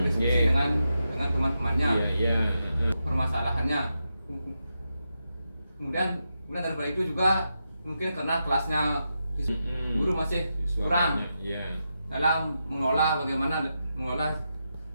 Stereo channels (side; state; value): both; inverted; correlation -0.87